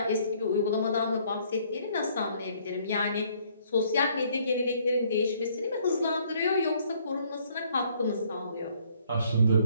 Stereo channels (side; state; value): both; inverted; correlation -0.64